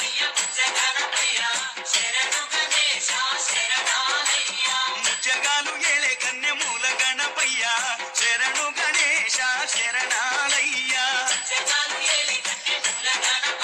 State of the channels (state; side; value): identical; both; correlation 1.00